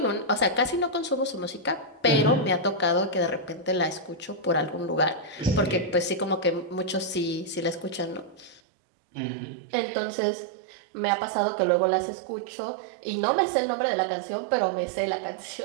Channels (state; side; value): drops out; left; at 8.6 s